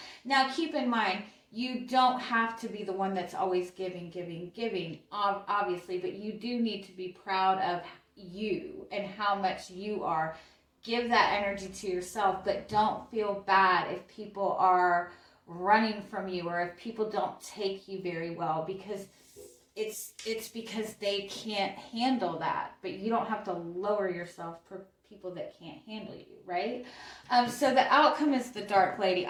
Now, keep in mind, you don't have to be the one that's always giving, obviously, but you do need to be proud of you and how much you are. Give that energy to yourself, but don't feel bad if people are running from you, or if people don't take you very well, because it's because they can't handle that. But you don't have to lower yourself for people that can't handle you, right? So the outcome is the Dark Lady.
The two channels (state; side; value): identical; both; correlation 1.00